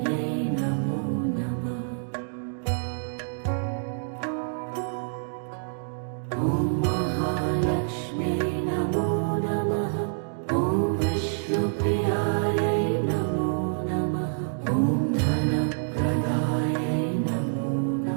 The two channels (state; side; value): silent; left; digital silence